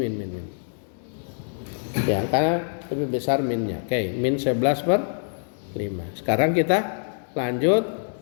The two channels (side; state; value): right; silent; 62 dB below the other